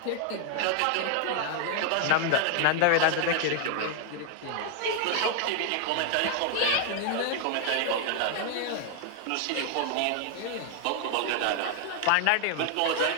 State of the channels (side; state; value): both; different; correlation 0.00